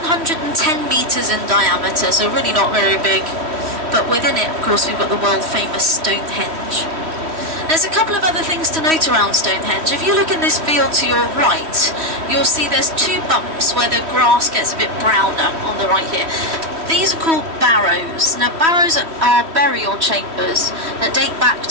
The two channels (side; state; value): left; late; 3.1 ms